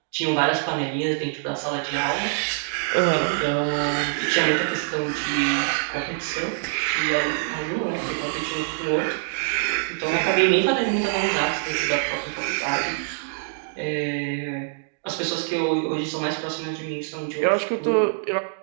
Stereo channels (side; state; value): left; silent; digital silence